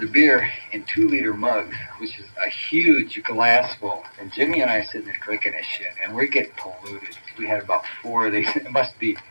beer in 2-liter mugs, which is a huge glass full. And Jimmy and I are sitting there drinking this shit, and we're getting polluted. We had about 4 of these.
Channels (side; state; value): both; inverted; correlation -1.00